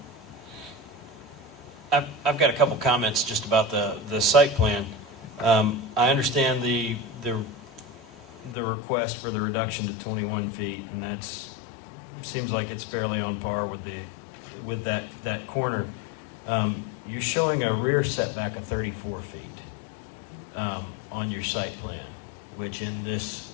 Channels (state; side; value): drops out; right; at 8.6 s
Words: Okay. I've got a couple comments just about the site plan. I understand the request for the reduction to 21 feet, and that's seems like it's fairly on par with that corner. You're showing a rear setback of 34 feet on your site plan, which in this